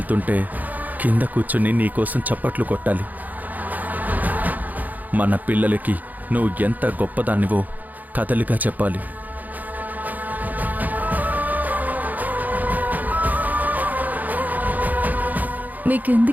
కింద కూర్చుని నీకోసం చప్పట్లు కొట్టాలి. మన పిల్లలకి నువ్వు ఎంత గొప్పదానివో కథలుగా చెప్పాలి.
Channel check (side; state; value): left; late; 0.081 ms